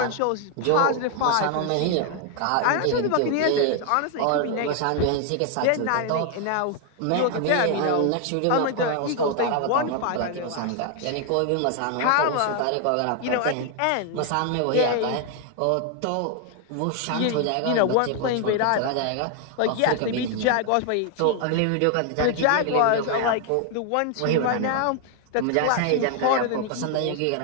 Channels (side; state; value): both; different; correlation 0.00